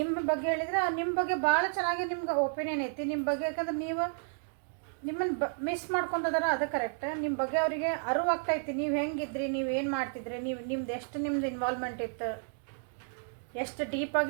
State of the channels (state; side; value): silent; left; digital silence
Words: ಬಗ್ಗೆ ಹೇಳಿದರೆ ನಿಮ್ಮ ಬಗ್ಗೆ ಭಾಳ ಚೆನ್ನಾಗಿ ನಿಮ್ಗೆ ಒಪಿನಿಯನ್ ಐತಿ ನಿಮ್ಮ ಬಗ್ಗೆ. ಯಾಕಂದ್ರೆ ನೀವು ನಿಮ್ಮನ್ನು ಮಿಸ್ ಮಾಡ್ಕೊತದಾರ, ಅದು ಕರೆಕ್ಟ್. ನಿಮ್ಮ ಬಗ್ಗೆ ಅವರಿಗೆ ಅರಿವು ಆಗ್ತಾಯಿತ್ತು, ನೀವು ಹೆಂಗಿದ್ರಿ, ನೀವು ಏನು ಮಾಡ್ತಿದ್ರಿ, ನಿಮ್ದು ಎಷ್ಟು ಇನ್ವಾಲ್ವ್ಮೆಂಟ್ ಇತ್ತು, ಎಷ್ಟು